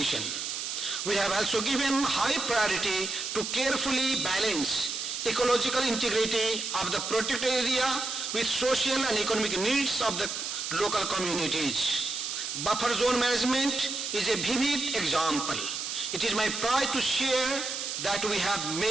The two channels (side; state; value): right; noise; hiss, 4 dB below the sound